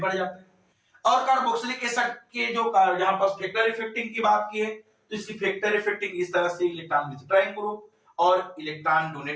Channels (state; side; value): identical; both; correlation 1.00